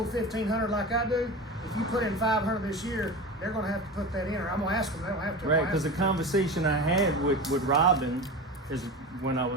$1,500 like I do, if you put in $500 this year, they're gonna have to put that in, or I'm gonna ask them, they don't have to. I'm Right, gonna because the ask them. conversation I had with Robin is when I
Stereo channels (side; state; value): both; normal; correlation 0.28